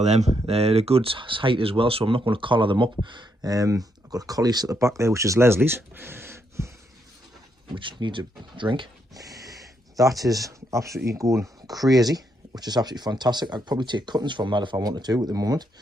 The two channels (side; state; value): both; normal; correlation 0.77